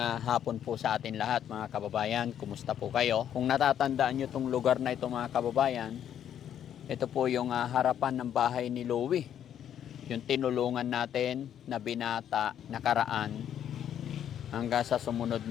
po sa atin lahat mga kababayan, kumusta po kayo? Kung natatandaan nyo itong lugar na ito mga kababayan, ito po yung harapan ng bahay ni Louie. Yung tinulungan natin na binata nakaraan hanggang sa sumunod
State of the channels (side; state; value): right; quieter; 9.8 dB